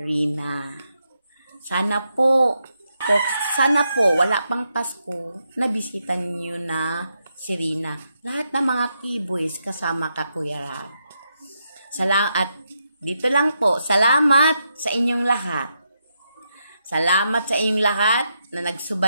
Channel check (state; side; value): inverted; both; correlation -0.83